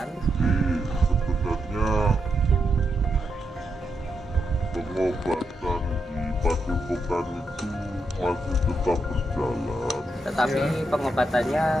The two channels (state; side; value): normal; both; correlation 0.82